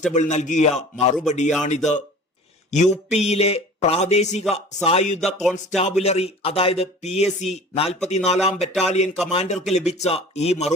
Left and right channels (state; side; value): normal; both; correlation 0.43